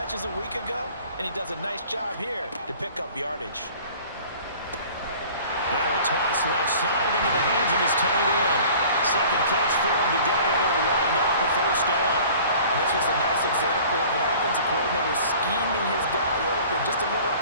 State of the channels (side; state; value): both; inverted; correlation -0.47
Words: a week ago, and he does a nice job here to pick up yardage. Now a toss left side into the hands of his tight end. Second catch for him today, and it'll wind up a first down. And this was a nice example of an offensive coordinator scheming his guy open. Just a little